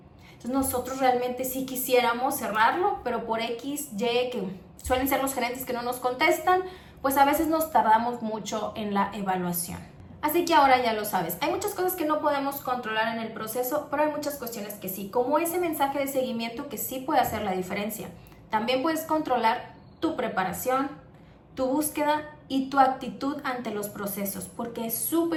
Entonces nosotros realmente sí quisiéramos cerrarlo, pero por X, Y, que suelen ser los gerentes que no nos contestan, pues a veces nos tardamos mucho en la evaluación. Así que ahora ya lo sabes, hay muchas cosas que no podemos controlar en el proceso, pero hay muchas cuestiones que sí, como ese mensaje de seguimiento que sí puede hacer la diferencia. También puedes controlar tu preparación, tu búsqueda y tu actitud ante los procesos, porque es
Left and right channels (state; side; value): identical; both; correlation 1.00